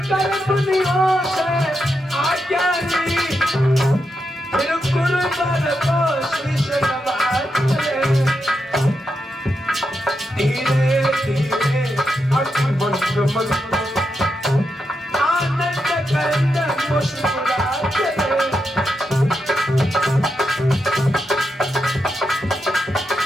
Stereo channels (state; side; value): normal; both; correlation 0.85